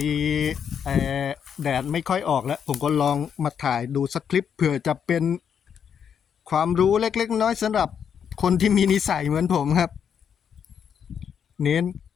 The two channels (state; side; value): quieter; right; 7.8 dB